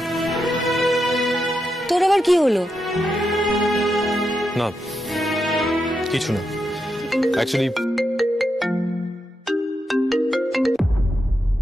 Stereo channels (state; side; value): normal; both; correlation 0.85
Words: তোর আবার কি হলো? না কিছু না, অ্যাকচুয়ালি